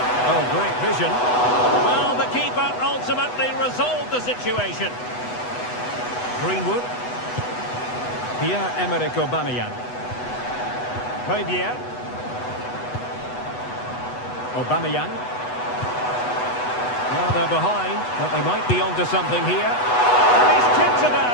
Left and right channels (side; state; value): right; late; 8.1 ms